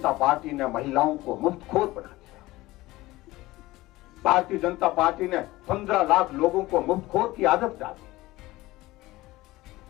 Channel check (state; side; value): quieter; right; 18.6 dB